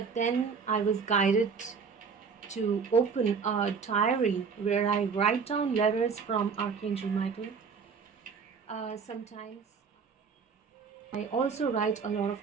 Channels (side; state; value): left; quieter; 5.7 dB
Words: then I was guided to open a diary where I write down letters from Archangel Michael. Sometimes I also write a lot of